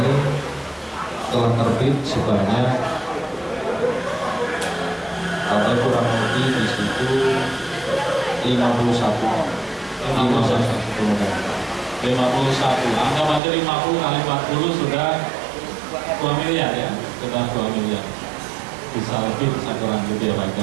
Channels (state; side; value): drops out; left; at 13.4 s